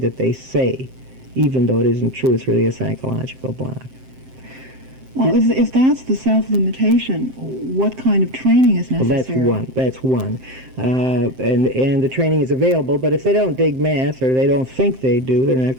they say, even though it isn't true. It's really a psychological block. Well, if that's the self-limitation, what kind of training is necessary? Well, that's one. And the training is available, but if they don't dig math or they don't think they do, they're not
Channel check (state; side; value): late; left; 7.7 ms